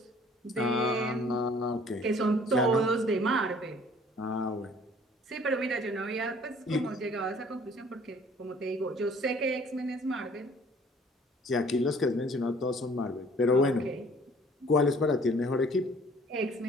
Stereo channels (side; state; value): both; normal; correlation 0.55